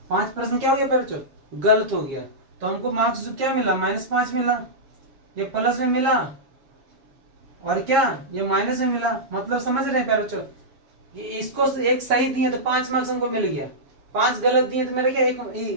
5 प्रश्न क्या हो गया प्यारे बच्चों, गलत हो गया, तो हमको मार्क्स जो क्या मिला, -5 मिला। ये प्लस में मिला और क्या ये माइनस में मिला, मतलब समझ रहे हैं प्यारे बच्चों, ये इसको एक सही दिए तो 5 मार्क्स हमको मिल गया, 5 गलत दिए तो मेरा क्या एक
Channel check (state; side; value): late; left; 7.3 ms